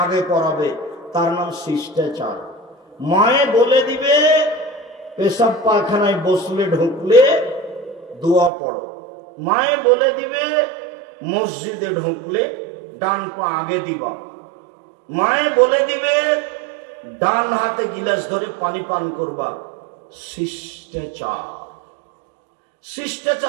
আগে পরাবে। তার নাম শিষ্টাচার। মায়ে বলে দিবে পেশাব পায়খানায় বসলে ঢুকলে দোয়া পড়ো। মায়ে বলে দিবে মসজিদে ঢুকলে ডান পা আগে দিবা। মায়ে বলে দিবে ডান হাতে গিলাস ধরে পানি পান করবা। শিষ্টাচার,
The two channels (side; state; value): left; drops out; at 8.5 s